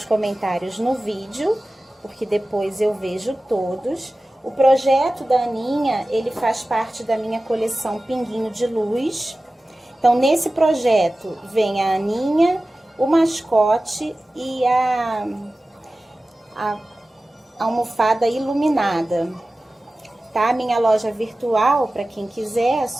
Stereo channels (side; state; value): both; normal; correlation 0.96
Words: comentários no vídeo, porque depois eu vejo todos. O projeto da Aninha, ele faz parte da minha coleção Pinguinho de Luz. Então, nesse projeto vem a Aninha, o mascote e a almofada iluminada. Tá? Minha loja virtual, para quem quiser, é